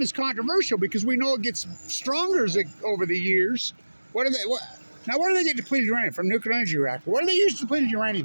is controversial because we know it gets stronger over the years. Now, where do they get depleted uranium? From nuclear energy reactor. What do they use depleted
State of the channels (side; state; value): both; inverted; correlation -1.00